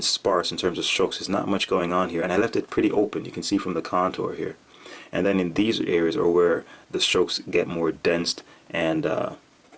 sparse in terms of strokes. There's not much going on here, and I left it pretty open. You can see from the contour here. And then in these areas are where the strokes get more dense and a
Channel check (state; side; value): identical; both; correlation 1.00